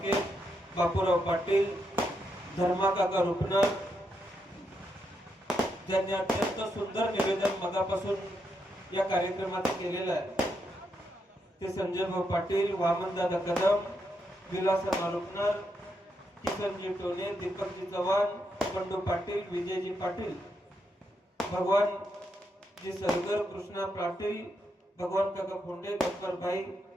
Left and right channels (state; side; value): normal; both; correlation 0.81